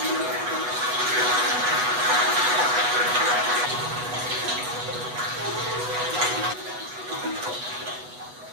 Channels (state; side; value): late; left; 8.1 ms